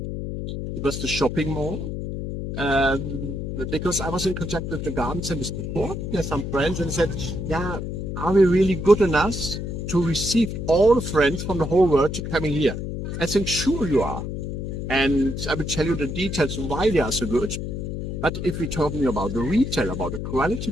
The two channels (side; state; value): left; noise; hum, 5 dB below the sound